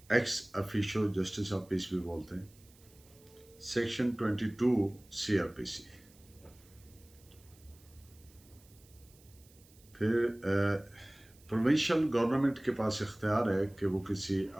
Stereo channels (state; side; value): noise; right; hiss, 27 dB below the sound